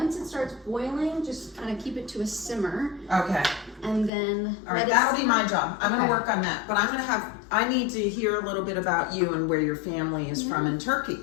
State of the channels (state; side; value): drops out; right; at 4.1 s